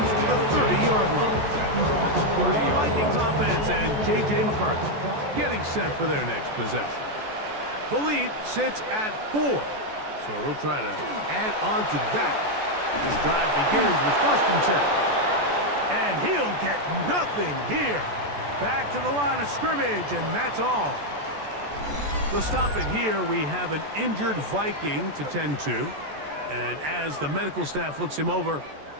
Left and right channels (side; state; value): left; late; 14 ms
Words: the 30-yard line. The Vikings offense and J.J. McCarthy getting set for their next possession. The lead sits at 4, so they'll try to add on to that. This drive begins with 1st and 10. And he'll get nothing here. Back to the line of scrimmage, and that's all. To stop it here, we have an injured Viking to tend to. And as the medical staff looks him over,